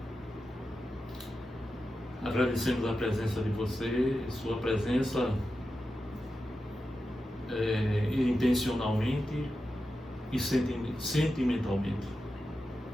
Agradecemos a presença de você, sua presença intencionalmente e sentimentalmente.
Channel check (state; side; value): normal; both; correlation 0.91